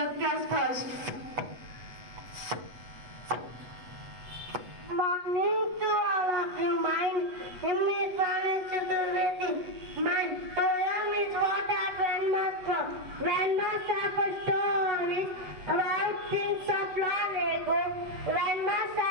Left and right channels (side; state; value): left; late; 8.1 ms